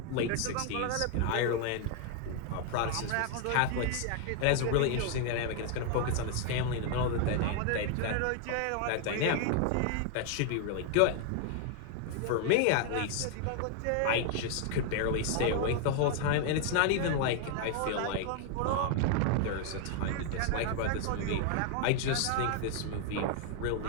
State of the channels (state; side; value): different; both; correlation 0.00